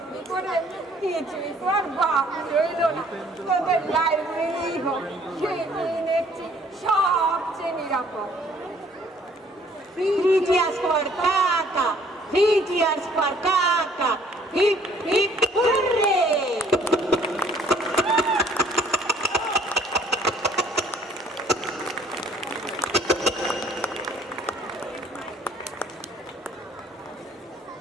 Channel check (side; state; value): both; normal; correlation 0.59